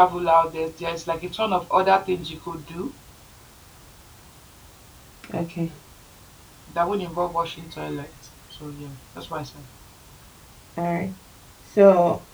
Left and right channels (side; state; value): both; identical; correlation 1.00